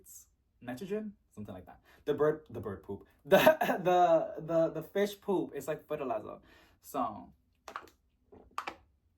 something like that. The bird poop, the fish poop is like fertilizer. So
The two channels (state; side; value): identical; both; correlation 1.00